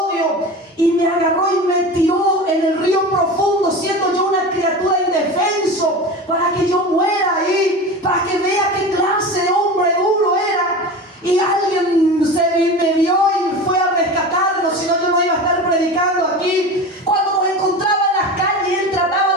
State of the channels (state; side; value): normal; both; correlation 0.30